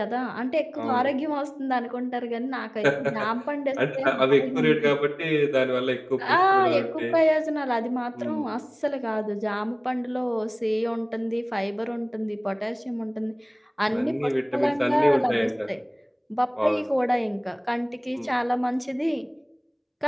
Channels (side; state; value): both; identical; correlation 1.00